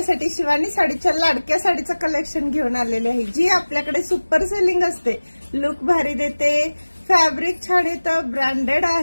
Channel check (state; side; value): inverted; both; correlation -1.00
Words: शिवानी साडीच्या लाडक्या साडीचं कलेक्शन घेऊन आलेले आहे, जी आपल्याकडे सुपर सेलिंग असते. लुक भारी देते, फॅब्रिक छान येतं, ब्रँडेड